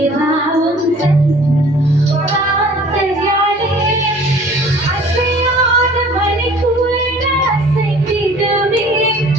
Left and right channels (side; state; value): both; normal; correlation 0.50